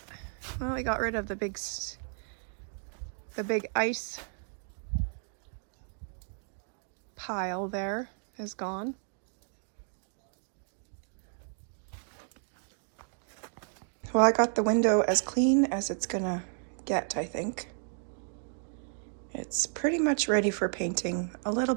well, we got rid of the big ice pile there is gone. Well, I got the window as clean as it's gonna get, I think. It's pretty much ready for painting. A little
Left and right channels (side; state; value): left; silent; 56 dB below the other